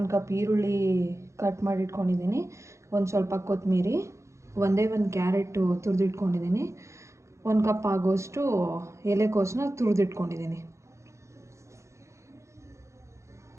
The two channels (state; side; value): late; left; 0.14 ms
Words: ಕಪ್ ಈರುಳ್ಳಿ ಕಟ್ ಮಾಡಿಟ್ಕೊಂಡಿದ್ದೀನಿ, ಒಂದು ಸ್ವಲ್ಪ ಕೊತ್ತಂಬರಿ, ಒಂದೇ ಒಂದು ಕ್ಯಾರೆಟು ತುರಿದಿಟ್ಕೊಂಡಿದ್ದೀನಿ, 1 ಕಪ್ ಆಗೋಷ್ಟು ಎಲೆಕೋಸನ್ನ ತುರಿದಿಟ್ಕೊಂಡಿದ್ದೀನಿ.